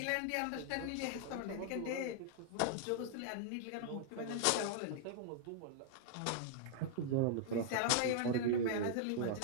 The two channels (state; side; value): different; both; correlation 0.00